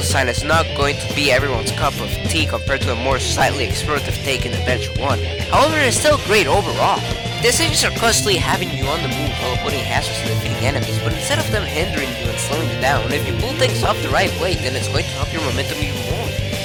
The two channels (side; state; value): both; identical; correlation 1.00